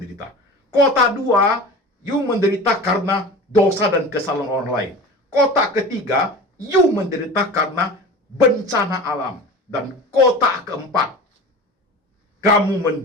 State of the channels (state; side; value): normal; both; correlation 0.35